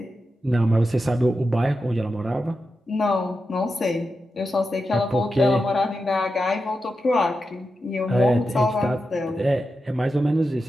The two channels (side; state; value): both; normal; correlation 0.89